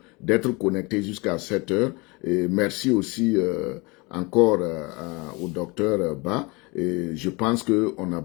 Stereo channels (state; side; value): quieter; right; 26.6 dB